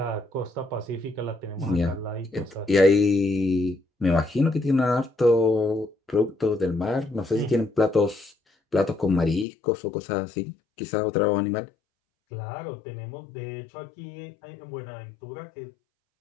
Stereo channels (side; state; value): right; drops out; at 9.5 s